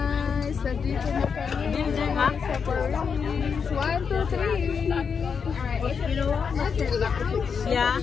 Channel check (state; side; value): quieter; right; 6.2 dB